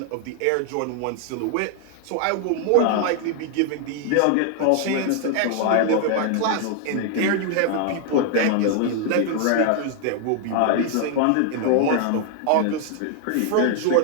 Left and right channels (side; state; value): both; different; correlation 0.00